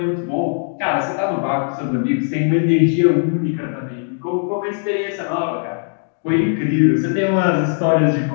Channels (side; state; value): right; silent; 67 dB below the other